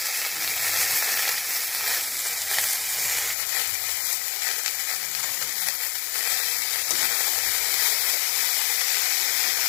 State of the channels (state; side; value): drops out; right; at 3.4 s